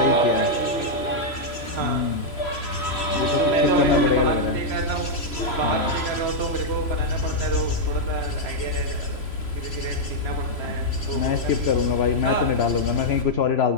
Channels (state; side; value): late; right; 3.0 ms